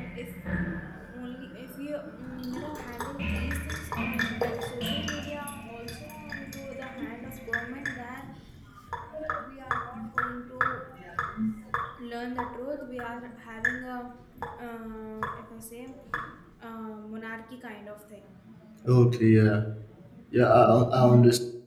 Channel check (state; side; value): identical; both; correlation 1.00